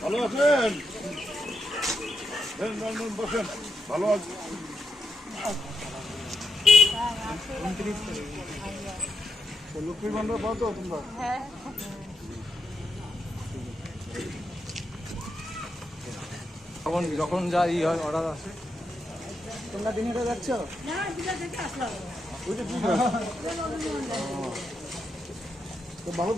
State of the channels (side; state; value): both; normal; correlation 0.83